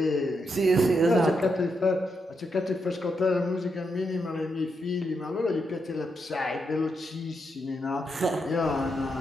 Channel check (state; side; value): normal; both; correlation 0.82